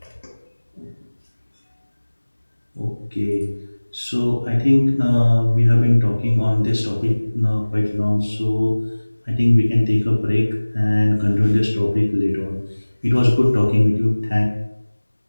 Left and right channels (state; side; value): inverted; both; correlation -1.00